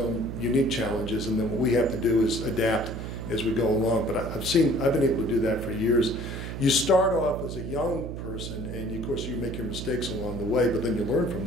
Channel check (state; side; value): noise; right; hum, 7 dB below the sound